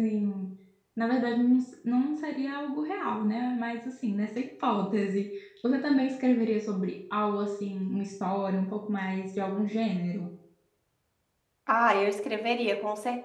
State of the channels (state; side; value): identical; both; correlation 1.00